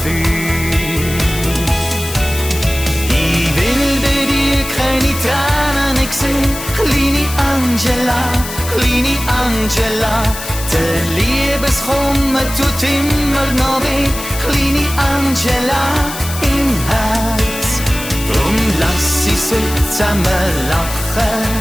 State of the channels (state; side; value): noise; left; hiss, 9 dB below the sound